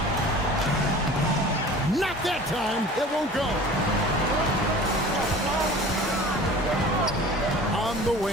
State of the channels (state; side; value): normal; both; correlation 0.42